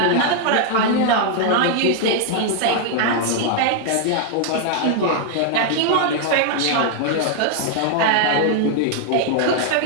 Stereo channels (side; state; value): both; different; correlation 0.00